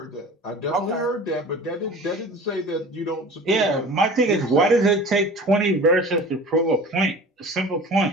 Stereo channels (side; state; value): both; normal; correlation 0.40